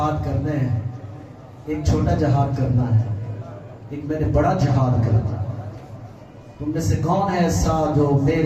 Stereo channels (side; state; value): both; identical; correlation 1.00